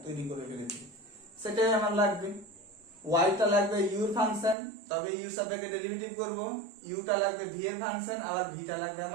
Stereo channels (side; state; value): left; drops out; at 4.5 s